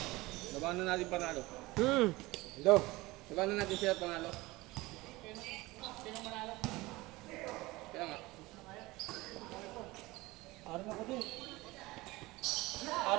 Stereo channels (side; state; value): left; quieter; 20.8 dB